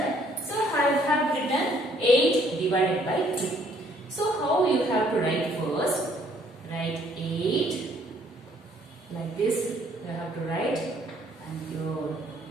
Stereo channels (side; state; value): both; normal; correlation 0.63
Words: So I have written 8 divided by 2. So how you have to write first? Write 8 like this. You have to write and here.